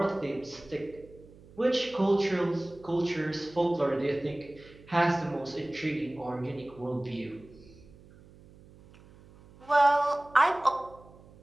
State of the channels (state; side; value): noise; right; hum, 23 dB below the sound